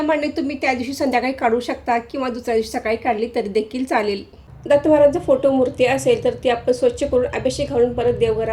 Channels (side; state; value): both; identical; correlation 1.00